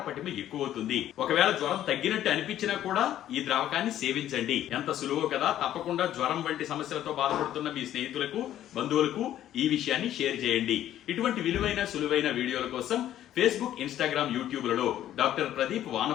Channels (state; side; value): quieter; right; 12.0 dB